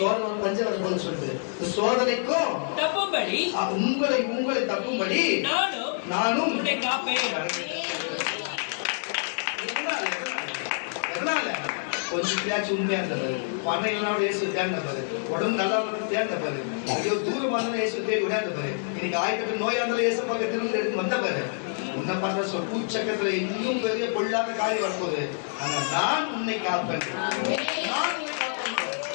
பஞ்சம் வரும்போது சொல்லுது இந்த சோதனைக்கும் தப்பும்படி உங்களை தப்பும்படி நானும் உன்னை காப்பேன். எதனால கொஞ்சம் பேச்சு உண்மையா இருந்தது பணம் இல்லைனா இயேசு தேர்ந்த பாரு உடம்பு நல்லா தேர்ந்த பாரு ஐயோ தூரமா இருந்தாலும் இயேசு தேடி விடாத பாரு இன்னைக்கு ஆயிரத்தி நோயா இருந்தாலும் இயேசு பக்கம் திரும்ப எடுத்து வந்த பாரு உன்னை பண்ற சொல் பூச்சக்கத்துல இன்னும் பெரிய பொல்லாத காரியம் வரப்போகுது. ஆனா நான் உன்னை காப்பேன்.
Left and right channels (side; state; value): right; silent; digital silence